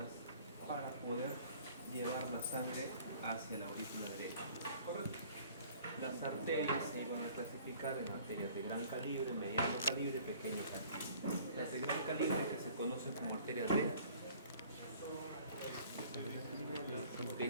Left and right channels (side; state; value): both; inverted; correlation -0.52